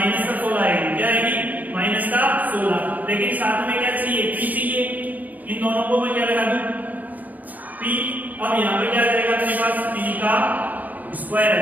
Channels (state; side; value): late; left; 0.080 ms